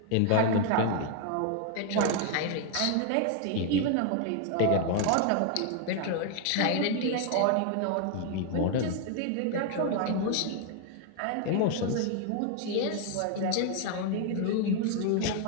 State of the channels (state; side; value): different; both; correlation 0.00